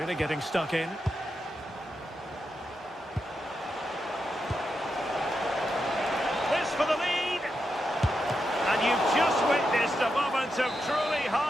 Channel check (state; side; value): normal; both; correlation 0.86